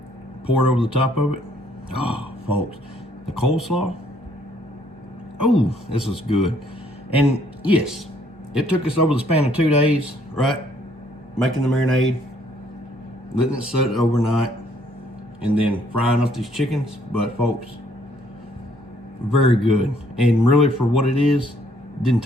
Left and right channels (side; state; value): both; normal; correlation 0.65